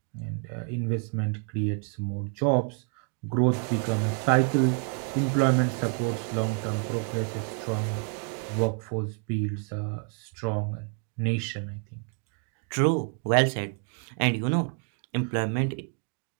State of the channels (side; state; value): left; quieter; 37.7 dB